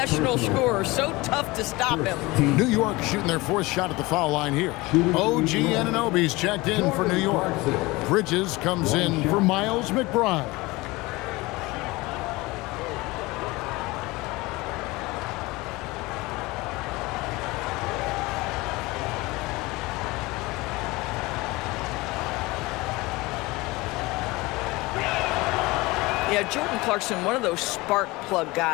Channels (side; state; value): right; quieter; 22.1 dB